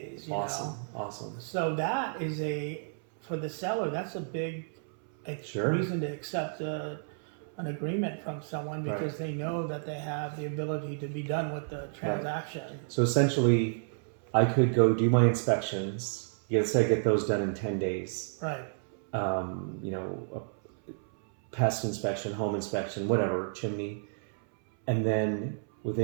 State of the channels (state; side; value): silent; left; 57 dB below the other